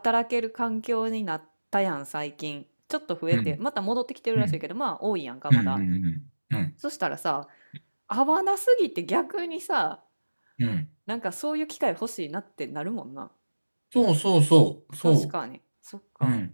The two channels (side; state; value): both; inverted; correlation -1.00